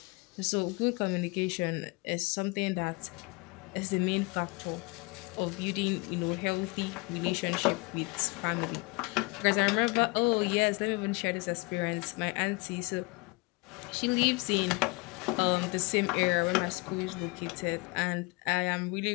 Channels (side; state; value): right; quieter; 27.5 dB